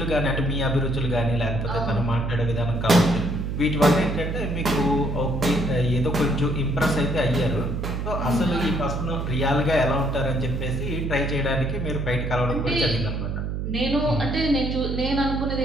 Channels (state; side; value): noise; right; hum, 3 dB below the sound